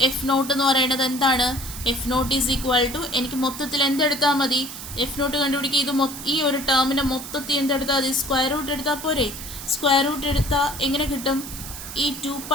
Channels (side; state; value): right; noise; hiss, 11 dB below the sound